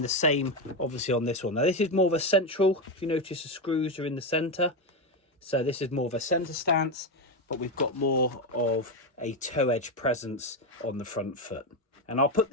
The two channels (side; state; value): both; normal; correlation 0.11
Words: the same obviously on this one. Now this is more of a central, if you notice the screws are in the centre, so this is more of a centre stance, but we've got more of a toe edge presence on the front foot. And I'll put